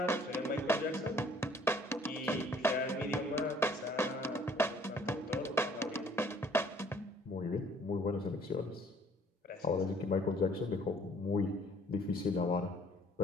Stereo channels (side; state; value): both; normal; correlation 0.58